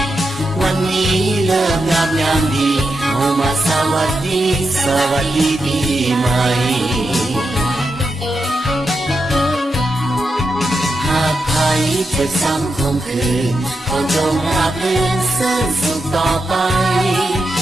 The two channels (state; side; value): normal; both; correlation 0.86